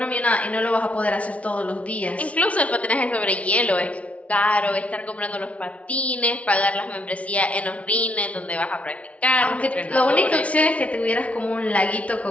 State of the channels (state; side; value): late; right; 0.065 ms